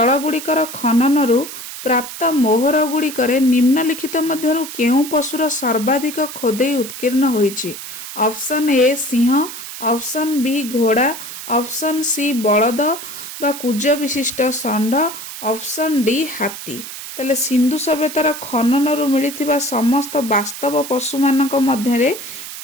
गुड़िकर खननरु प्राप्त मोहर गुड़िकरे निम्नलिखित मध्यरु केउ पशुर सर्वाधिक खोदेई उत्कीर्ण होईछि। ऑप्शन ए सिंह, ऑप्शन बी घोड़ा, ऑप्शन सी बलद बा कुज विशिष्ट षंढ, ऑप्शन डी हाथी। ताले सिंधु सभ्यतार खननरु मिलिथिबा समस्त वास्तव पशु मानक मध्यरे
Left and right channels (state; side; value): noise; right; hiss, 10 dB below the sound